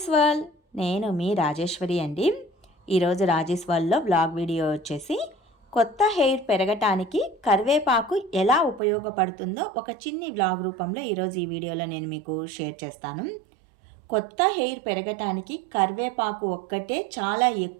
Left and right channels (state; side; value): drops out; left; at 8.8 s